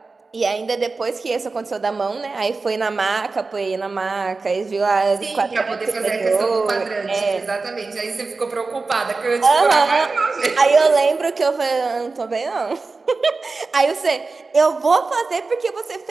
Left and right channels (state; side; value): quieter; left; 3.9 dB